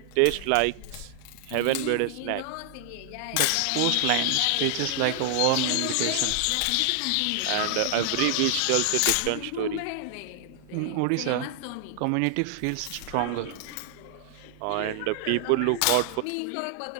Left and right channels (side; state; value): both; different; correlation 0.00